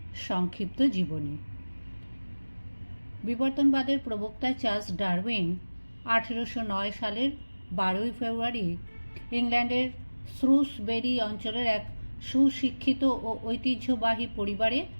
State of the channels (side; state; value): both; inverted; correlation -1.00